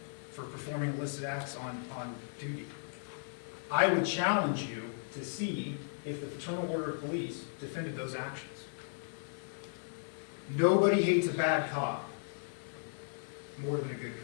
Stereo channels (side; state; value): right; silent; digital silence